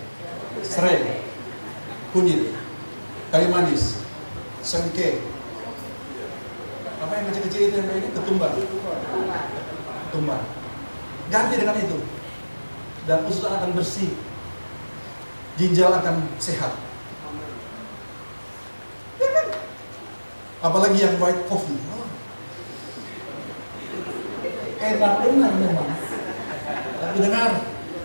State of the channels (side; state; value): both; inverted; correlation -1.00